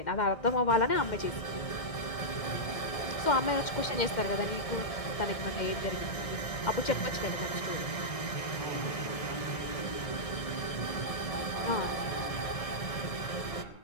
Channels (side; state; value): right; late; 1.6 ms